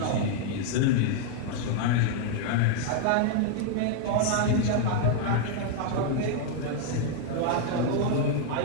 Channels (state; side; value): different; both; correlation 0.00